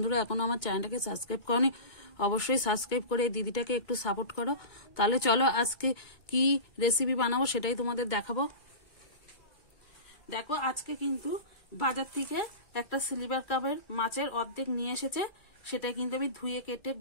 এখনো আমার চ্যানেলটাকে সাবস্ক্রাইব করনি, অবশ্যই সাবস্ক্রাইব করে দিদিটাকে একটু সাপোর্ট করো। তাহলে চলো আজকে কি রেসিপি বানাবো সেটাই তোমাদের দেখাবো। দেখো, আজকে কিন্তু বাজার থেকে একটা সিলভার কাপের মাছের অর্ধেক নিয়ে এসেছে। সেটা কিন্তু আমি ধুয়ে কেটে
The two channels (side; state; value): right; late; 2.2 ms